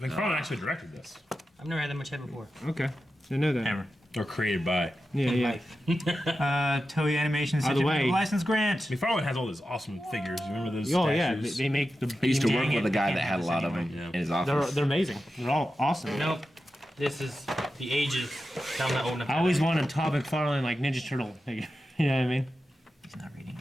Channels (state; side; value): normal; both; correlation 0.91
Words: McFarlane actually directed this, I've never had that much head before. Okay, didn't know that. Hammer. or created by. Yeah. Toei Animation By the way- license grant. McFarlane has all those awesome figures. You remember those? Oh yeah, statues? they make the. I used to work Dang with it. a guy can't that had a have lot this of them anymore. in his They're office. amazing. They're all awesome. Nope. This is the ages. Tell them that old enough. I always wanted a Todd McFarlane like Ninja Turtle figure. You know what I mean? He's not reading